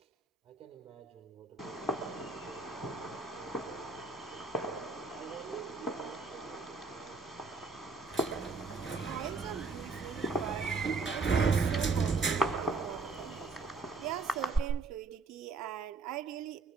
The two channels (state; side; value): quieter; left; 4.1 dB